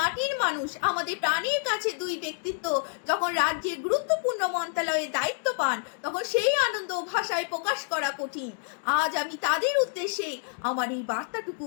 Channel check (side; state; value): right; silent; digital silence